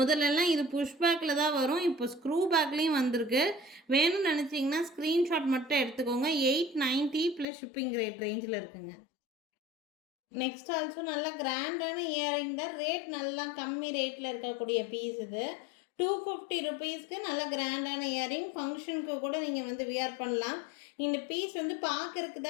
இது புஷ் பேக்கில் தான் வரும். இப்போ ஸ்க்ரூ பேக்லேயும் வந்திருக்கு. வேணும்னு நினச்சிங்கன்னா ஸ்க்ரீன்ஷாட் மட்டும் எடுத்துக்கோங்க. 890 ப்ளஸ் ஷிப்பிங் ரேட் ரேஞ்சில் இருக்குங்க. நெக்ஸ்ட் ஆல்சோ நல்ல கிராண்டான இயரிங் தான். ரேட் நல்லா கம்மி ரேட்டில் இருக்கக்கூடிய பீஸ் இது. 250 ருபீஸ்க்கு நல்ல கிராண்டான இயரிங். ஃபங்க்ஷனுக்கு கூட நீங்கள் வந்து வியர் பண்ணலாம். இந்த பீஸ் வந்து பார்க்கறதுக்கு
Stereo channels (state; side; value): drops out; right; at 7.5 s